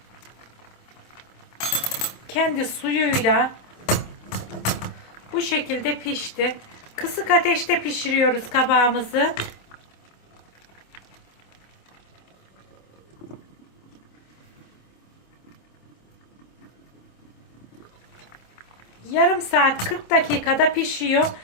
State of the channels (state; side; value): late; right; 27 ms